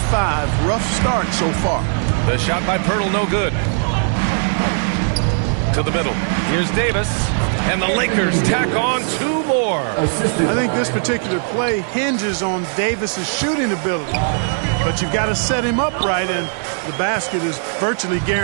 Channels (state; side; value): silent; left; digital silence